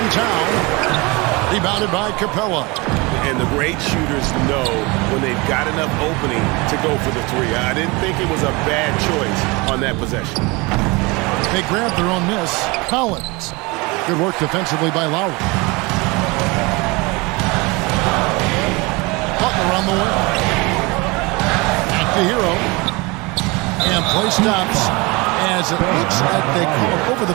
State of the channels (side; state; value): left; quieter; 25.6 dB